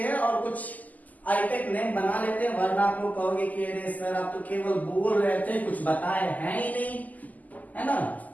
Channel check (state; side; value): late; right; 0.079 ms